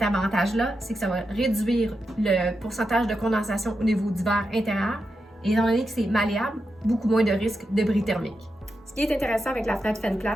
avantage-là, c'est que ça va réduire le pourcentage de condensation au niveau du verre intérieur. Et étant donné que c'est malléable, beaucoup moins de risque de bris thermique. Ce qui est intéressant avec la fenêtre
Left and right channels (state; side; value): normal; both; correlation 0.87